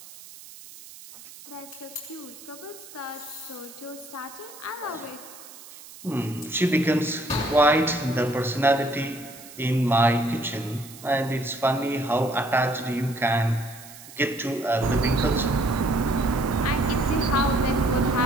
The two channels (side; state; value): right; noise; hiss, 18 dB below the sound